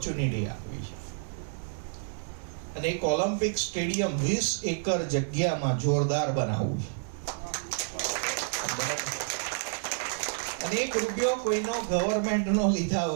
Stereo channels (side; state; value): left; silent; digital silence